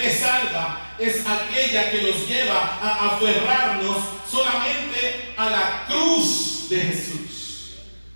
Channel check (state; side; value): inverted; both; correlation -1.00